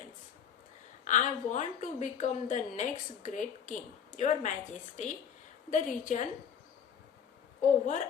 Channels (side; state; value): right; quieter; 7.8 dB